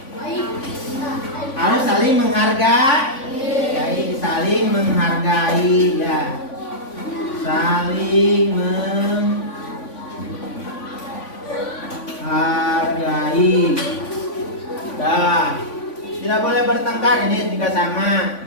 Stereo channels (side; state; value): right; late; 3.5 ms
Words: Harus saling menghargai. Saling menghargai ya. Saling menghargai. Dah. Tidak boleh bertengkar, ini juga sama.